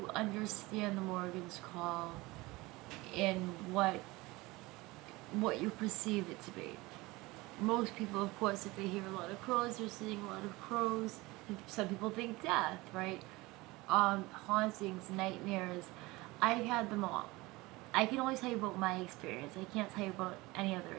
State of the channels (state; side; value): quieter; left; 21.7 dB